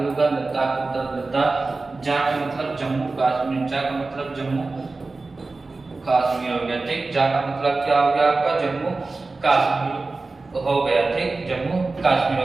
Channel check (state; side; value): quieter; left; 3.6 dB